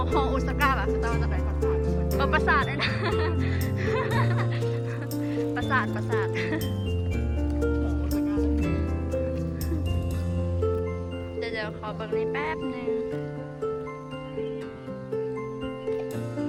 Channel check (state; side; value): identical; both; correlation 1.00